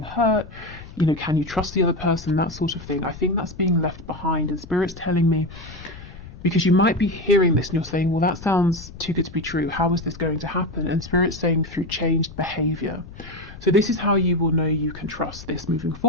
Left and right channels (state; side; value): noise; left; rumble, 16 dB below the sound